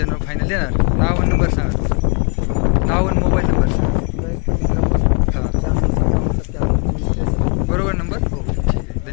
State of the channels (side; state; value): right; quieter; 35.2 dB